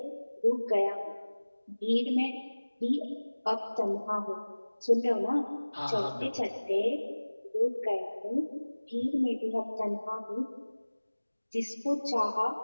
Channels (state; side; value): inverted; both; correlation -1.00